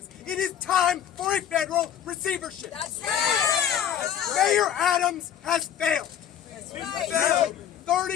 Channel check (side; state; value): right; quieter; 9.5 dB